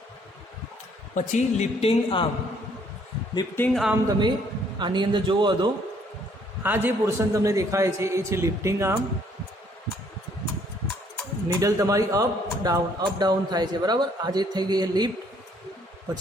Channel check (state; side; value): normal; both; correlation 0.64